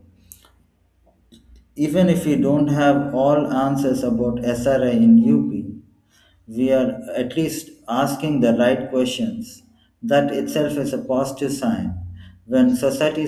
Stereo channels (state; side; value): identical; both; correlation 1.00